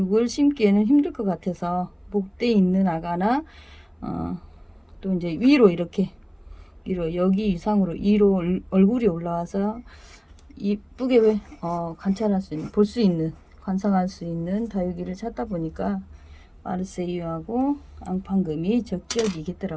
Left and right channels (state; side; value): identical; both; correlation 1.00